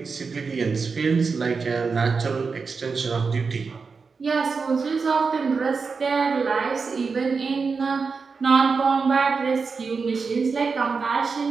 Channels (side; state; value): left; quieter; 4.9 dB